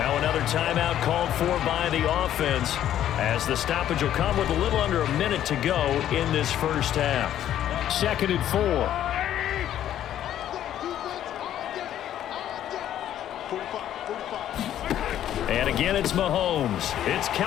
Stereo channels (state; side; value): quieter; right; 11.3 dB